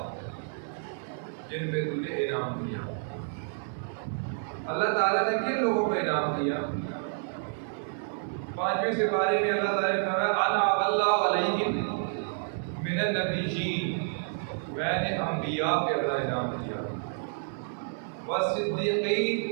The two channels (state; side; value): silent; left; 58 dB below the other